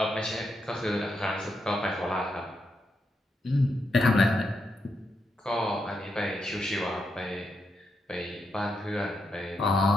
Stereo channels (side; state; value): both; normal; correlation 0.82